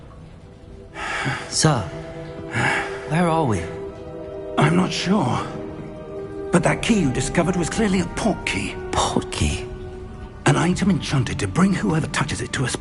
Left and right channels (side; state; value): both; identical; correlation 1.00